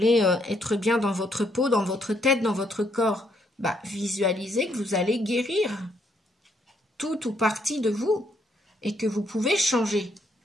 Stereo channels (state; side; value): normal; both; correlation 0.73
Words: être bien dans votre peau, dans votre tête, dans votre corps. Visualisez que vous allez guérir tout ou partie de vous et que vous pouvez changer.